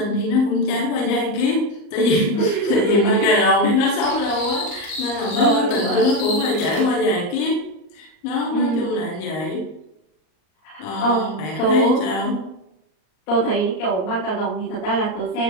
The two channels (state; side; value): late; right; 38 ms